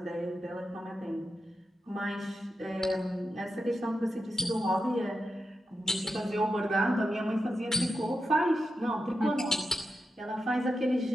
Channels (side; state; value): both; normal; correlation 0.88